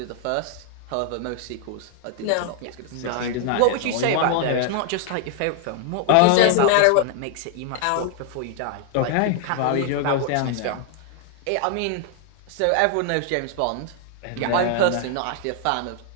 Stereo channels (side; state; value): both; different; correlation 0.00